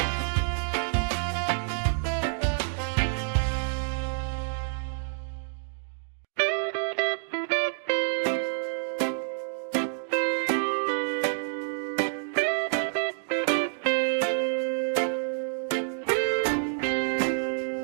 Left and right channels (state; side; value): silent; left; digital silence